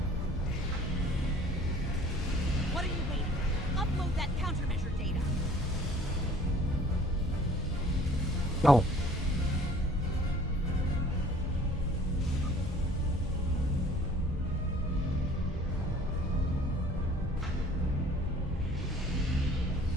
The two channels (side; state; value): both; normal; correlation 0.52